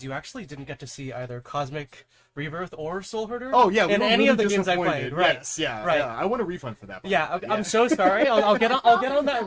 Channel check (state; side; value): identical; both; correlation 1.00